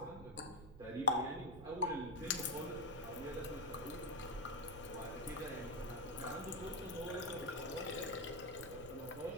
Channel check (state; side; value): noise; right; rumble, 13 dB below the sound